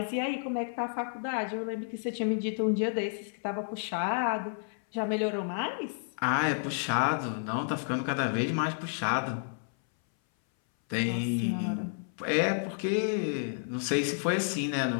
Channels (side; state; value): right; silent; 57 dB below the other